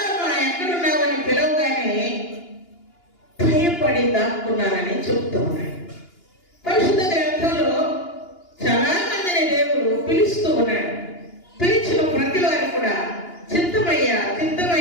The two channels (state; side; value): late; right; 2.9 ms